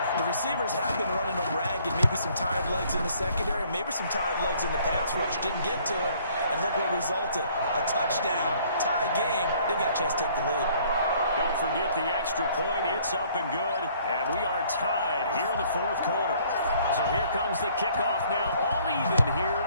The receivers have been running them ragged. Maybe some tired legs in the secondary. Maybe some tired legs in the pass rush. Didn't get to it. And look what resulted. A touchdown. Tie game. They've got a chance to take the lead. Don't forget the extra point. It's up and good. And we are tied here in the 4th quarter. So here comes the kickoff now. All even here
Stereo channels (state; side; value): inverted; both; correlation -0.60